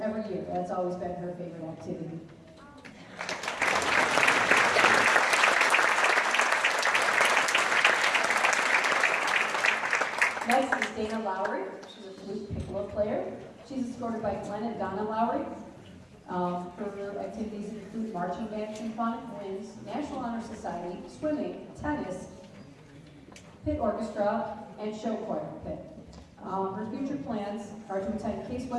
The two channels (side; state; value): both; identical; correlation 1.00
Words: every year, that's always been her favorite activity. Next is Dana Lowry. She's a flute piccolo player. She's escorted by Glenn and Donna Lowry. Her activities include marching band, symphonic winds, National Honor Society, swimming, tennis, pit orchestra, and show choir pit. Her future plans are to attend Case